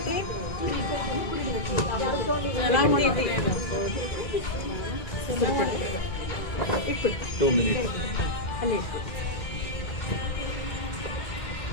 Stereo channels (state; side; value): late; right; 1.9 ms